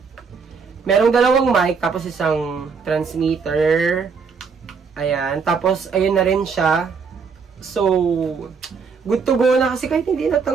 dalawang mic, tapos isang transmitter. Ayan. Tapos, ayun na rin siya. So, good to go na kasi kahit hindi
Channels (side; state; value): left; quieter; 5.5 dB